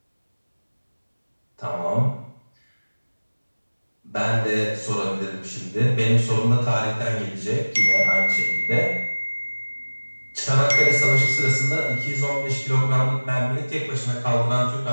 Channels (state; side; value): inverted; both; correlation -1.00